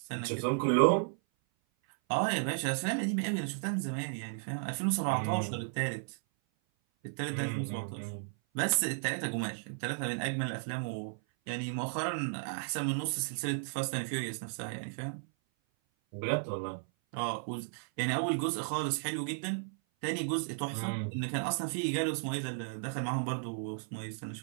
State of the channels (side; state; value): left; silent; 55 dB below the other